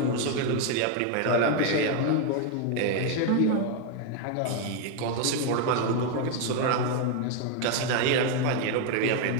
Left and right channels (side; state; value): both; different; correlation 0.01